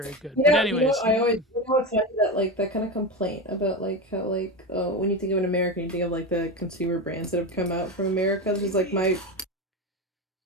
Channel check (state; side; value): normal; both; correlation 0.19